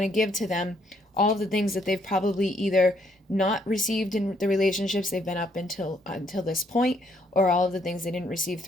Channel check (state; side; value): normal; both; correlation 0.70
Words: to give to them all of the things that they've probably either not received in the relationships they've been up until this point, or all of the things they didn't receive